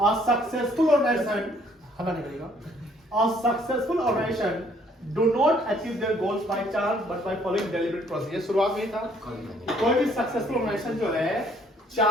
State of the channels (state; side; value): normal; both; correlation 0.63